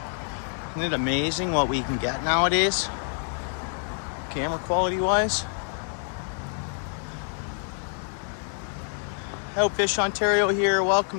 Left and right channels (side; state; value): right; silent; 57 dB below the other